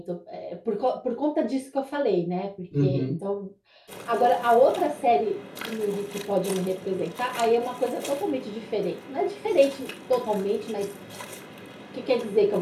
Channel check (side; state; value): both; identical; correlation 1.00